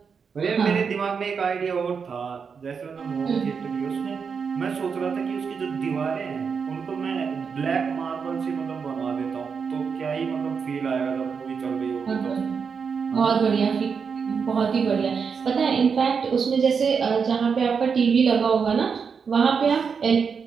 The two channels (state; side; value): quieter; left; 6.0 dB